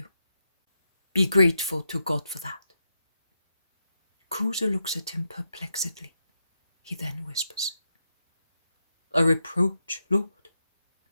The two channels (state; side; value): inverted; both; correlation -0.85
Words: Be grateful to God for that. Cusa looks at him perplexedly. He then whispers, A reproach, lord?